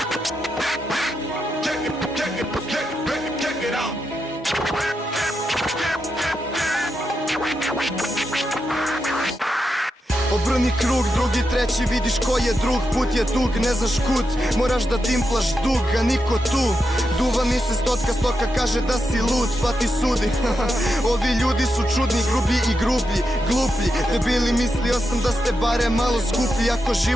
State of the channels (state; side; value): normal; both; correlation 0.86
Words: Check it out. Obrni krug, drugi, treći, vidiš ko je drug, put je dug, ne znaš kud, moraš da timplaš dug, a niko tu. Duva mi se stoka kaže da si lud, pa ti sudi. Ovi ljudi su čudni, grublji i grublji, gluplji, debili, mislio sam da ste bare malo skuplji, ako